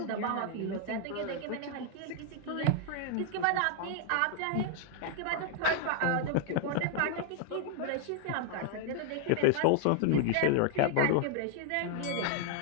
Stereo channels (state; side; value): different; both; correlation 0.00